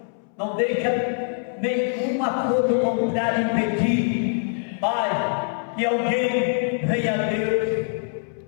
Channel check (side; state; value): right; silent; 63 dB below the other